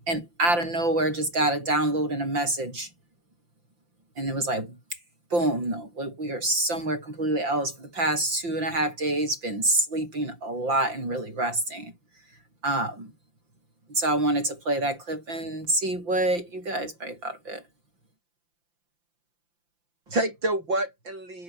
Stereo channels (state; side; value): late; left; 5.8 ms